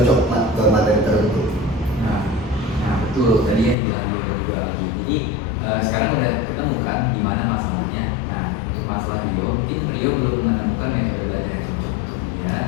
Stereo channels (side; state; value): right; drops out; at 3.8 s